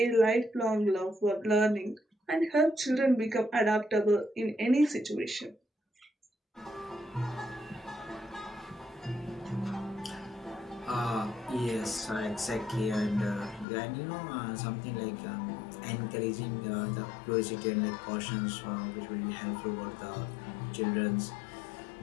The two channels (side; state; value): right; drops out; at 13.7 s